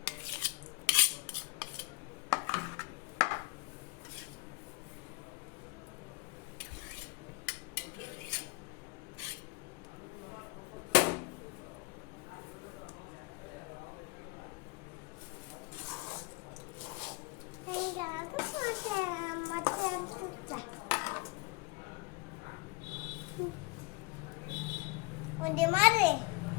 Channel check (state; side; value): quieter; right; 26.7 dB